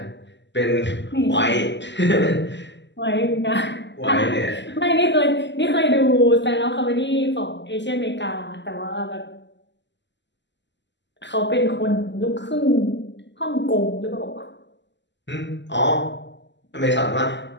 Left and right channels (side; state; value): right; late; 0.52 ms